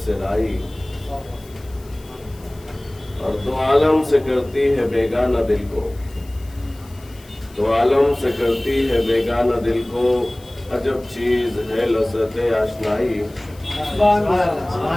سے لائی، اور دو عالم سے کرتی ہے بیگانہ دل کو، دو عالم سے کرتی ہے بیگانہ دل کو، عجب چیز ہے لذت آشنائی،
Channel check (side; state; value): left; noise; hiss, 25 dB below the sound